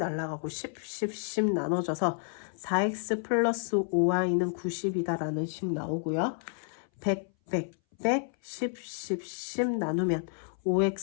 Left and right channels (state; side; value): silent; right; 58 dB below the other